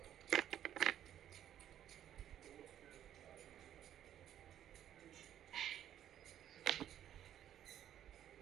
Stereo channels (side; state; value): left; quieter; 10.8 dB